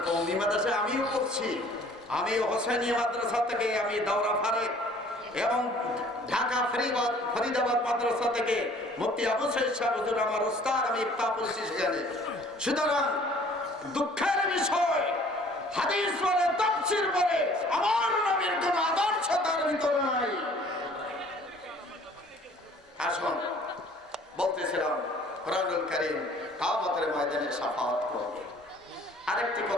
কওমি মাদ্রাসায় আমিও পড়ছি। আমি হোসেনিয়া মাদ্রাসা থেকে আমি দাওরা ফারেক এবং ঢাকা ফরিদাবাদ মাদ্রাসা থেকে মুফতি আবু সাইদ সাহেব হুজুর আমার উস্তাদ, আমি ইফতা পড়ছি সেখানে। সুতরাং দুঃখের বিষয়, হাদিস বলে, তাফসীর বলে, আমার নবীর কোন আদর্শ তার ভিতরে নাই। আসুন, বলতেছিলাম কোরআনুল কারীম কিয়ামতের ময়দানে শাফাআত করবে। আরেকটি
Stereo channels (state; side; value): normal; both; correlation 0.54